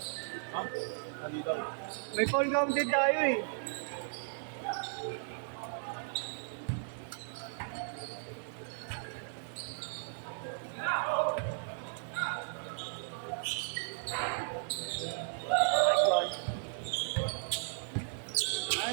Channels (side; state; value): left; silent; digital silence